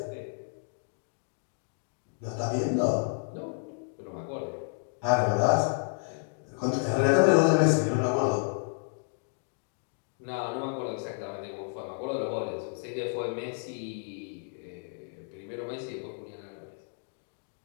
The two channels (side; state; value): right; silent; 57 dB below the other